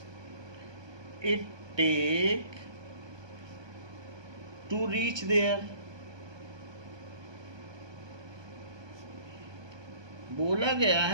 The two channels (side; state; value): left; late; 1.2 ms